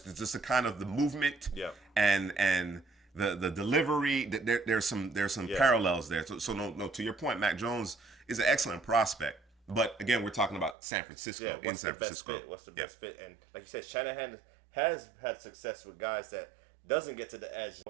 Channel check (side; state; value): left; drops out; at 10.8 s